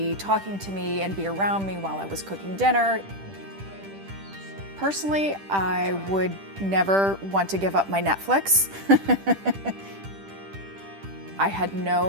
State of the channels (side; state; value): left; late; 10 ms